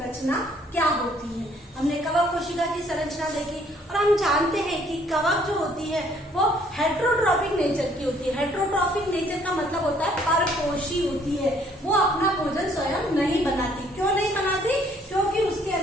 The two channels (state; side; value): normal; both; correlation 0.63